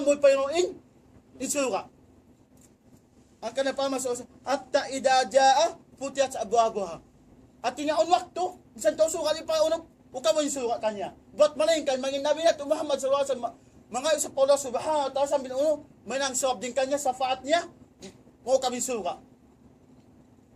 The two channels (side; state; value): both; identical; correlation 1.00